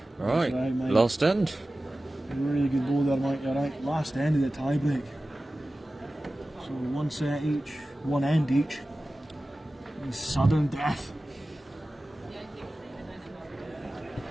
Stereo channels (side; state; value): both; normal; correlation 0.96